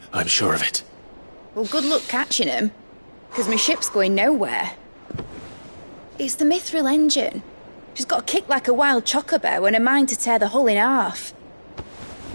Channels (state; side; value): inverted; both; correlation -1.00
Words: I'm sure of it. Well, good luck catching him, because my ship's going nowhere. It's the Mithril engine. She's got a kick like a wild chocobo and a mind to tear the hull in half.